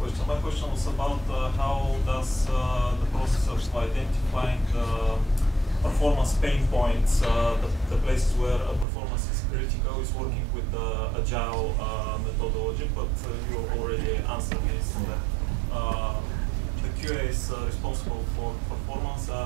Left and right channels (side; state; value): left; drops out; at 8.8 s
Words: My question was about how does the process of identifying performance pain points, the places where performance is critical, is working with the agile methodology, but you already answered this. The QAs responsible for performance